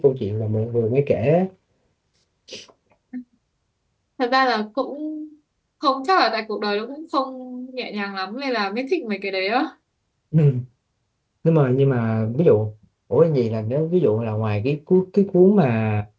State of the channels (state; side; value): identical; both; correlation 1.00